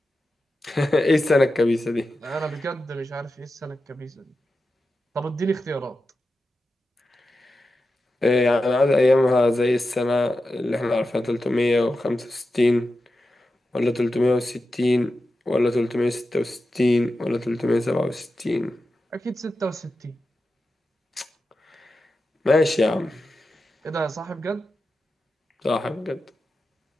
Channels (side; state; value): both; normal; correlation 0.91